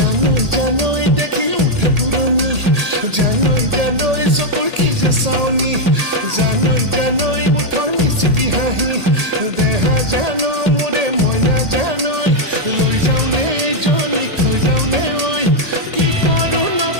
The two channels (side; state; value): left; late; 1.8 ms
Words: জানোই দেখি উঠে পুৰণি জানোই চকুৰ কি যে চাৱনি জানোই মুঠৰ মিচিকি হাঁহি দেহা জানো মোৰে মই নাজানোই লৈ যাওঁ নে এইজনীক থৈ যাওঁ নে ঐ কি কৰোঁ